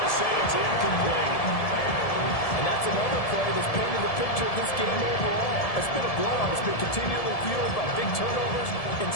say it's incomplete. And that's another play that's painted the picture of this game overall. It's been a blowout. It's been continually fueled by big turnovers and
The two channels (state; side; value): late; right; 1.7 ms